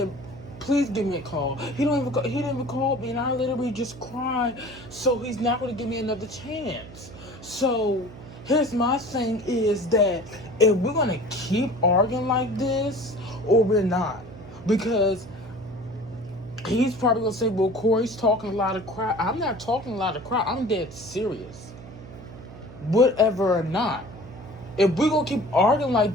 please give me a call. He didn't even call me, and I literally just cried. So he's not going to give me another chance. So here's my thing is that if we're going to keep arguing like this, or we're not, because he's probably going to say, well, Corey's talking a lot of crap. I'm not talking a lot of crap. I'm dead serious. Whatever or not. If we're going to keep arguing like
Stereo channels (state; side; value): noise; right; hum, 16 dB below the sound